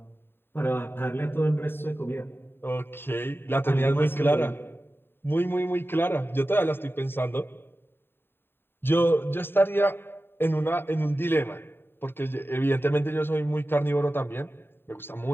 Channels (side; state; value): right; late; 0.11 ms